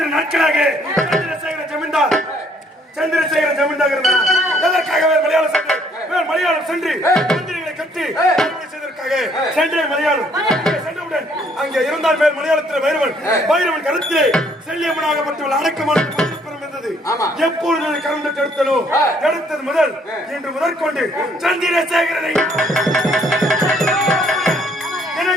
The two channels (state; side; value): normal; both; correlation 0.65